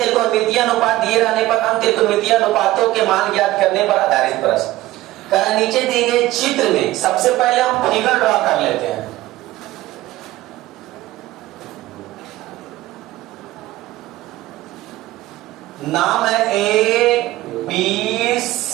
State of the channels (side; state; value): left; quieter; 16.7 dB